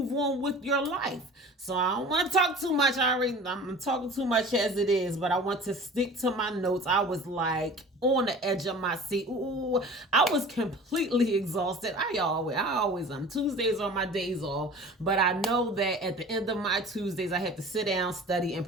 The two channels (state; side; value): normal; both; correlation 0.42